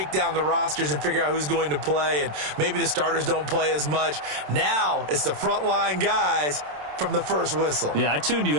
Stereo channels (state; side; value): late; left; 27 ms